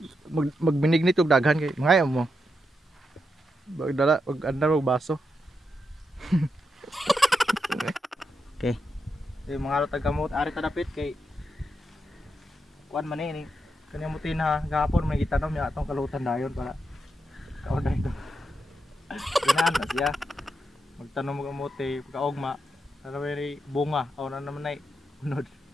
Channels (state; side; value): normal; both; correlation 0.84